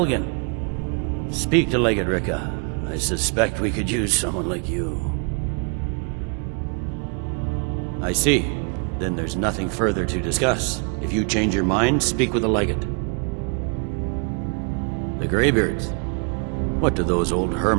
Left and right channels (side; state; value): left; quieter; 37.3 dB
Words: Speak to Legate Ricka. I suspect we could use someone like you. I see. Then there's nothing further to discuss. If you change your mind, speak with the Legate. The Greybeards. What do those old